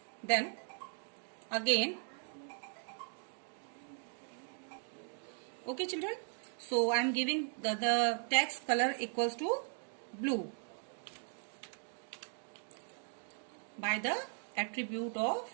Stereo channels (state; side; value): silent; left; 52 dB below the other